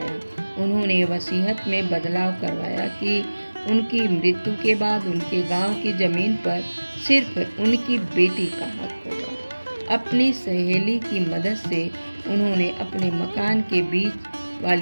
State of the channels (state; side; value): inverted; both; correlation -1.00